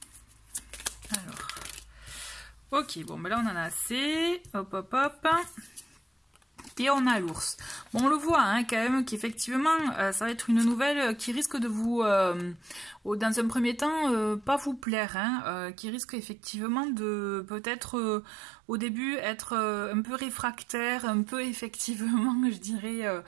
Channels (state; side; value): drops out; left; at 14.9 s